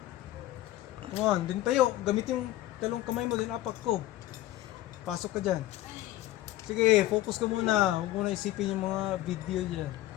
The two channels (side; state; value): right; quieter; 15.2 dB